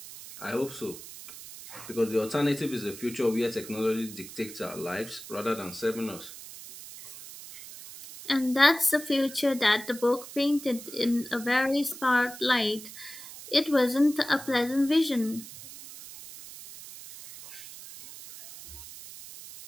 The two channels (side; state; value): right; noise; hiss, 14 dB below the sound